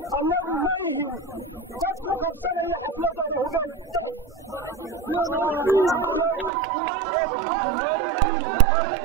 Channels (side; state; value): left; drops out; at 6.5 s